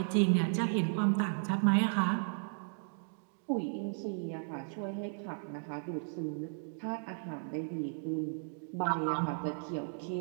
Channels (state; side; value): silent; left; digital silence